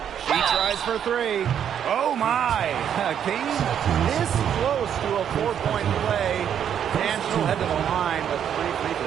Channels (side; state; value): left; quieter; 9.0 dB